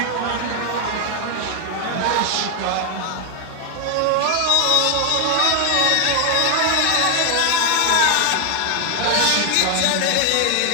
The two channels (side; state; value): both; different; correlation 0.00